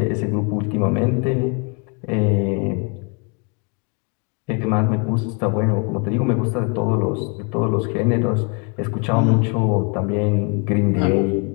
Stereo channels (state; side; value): quieter; right; 34.9 dB